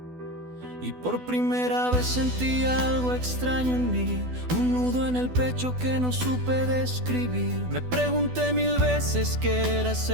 Y por primera vez sentí algo extraño en mí, un nudo en el pecho que no supe describir. Me pregunté 1000 veces qué era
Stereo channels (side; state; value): left; late; 12 ms